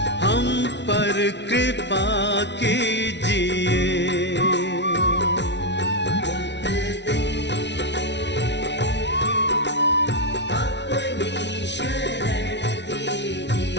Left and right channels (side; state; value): right; late; 0.51 ms